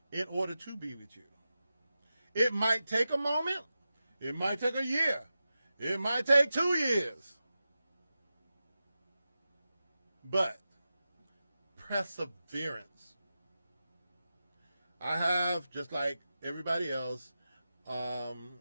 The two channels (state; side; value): inverted; both; correlation -0.92